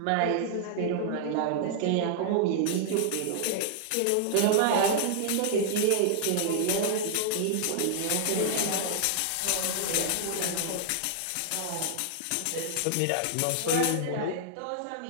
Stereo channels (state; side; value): different; both; correlation 0.00